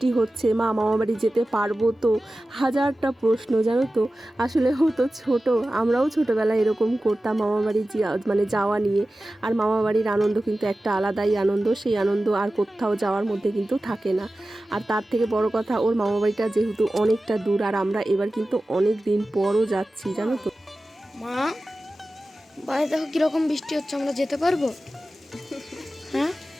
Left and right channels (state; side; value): normal; both; correlation 0.95